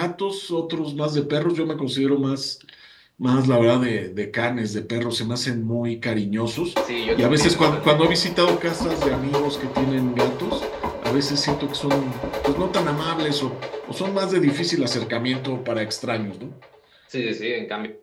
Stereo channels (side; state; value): both; identical; correlation 1.00